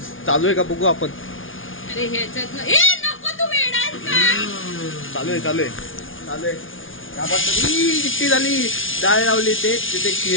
चालू आहे का बघू आपण. अरे ह्याच्यात नको, तू वेडायस का? चालू आहे. किती झाली डाळ लावली ते तिथे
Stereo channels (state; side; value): late; right; 0.58 ms